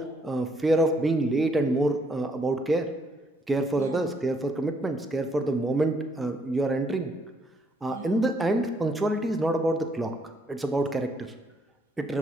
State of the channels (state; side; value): normal; both; correlation 0.71